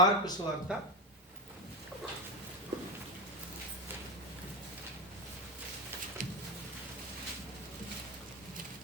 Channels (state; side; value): normal; both; correlation 0.16